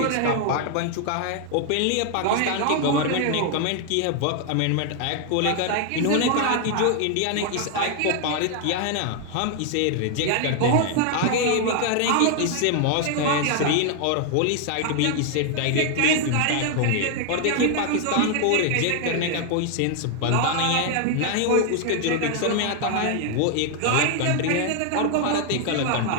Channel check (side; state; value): both; different; correlation 0.00